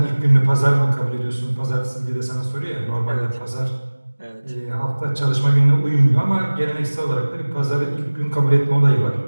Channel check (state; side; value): inverted; both; correlation -1.00